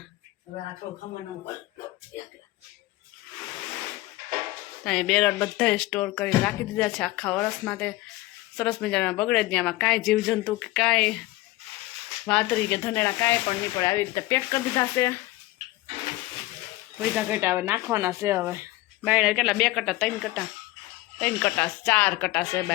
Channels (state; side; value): quieter; right; 18.7 dB